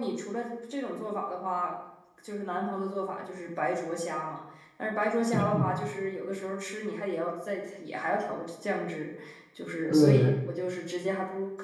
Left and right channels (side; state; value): both; identical; correlation 1.00